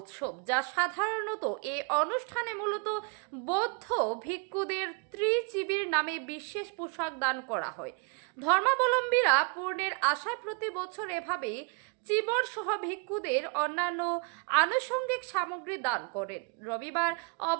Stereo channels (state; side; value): quieter; left; 35.5 dB